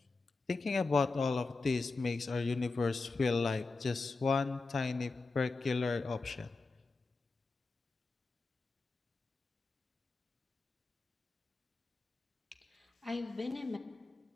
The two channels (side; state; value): right; quieter; 3.9 dB